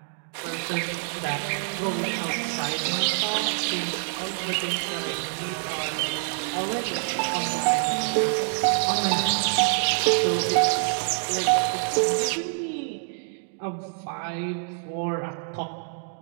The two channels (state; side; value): silent; left; digital silence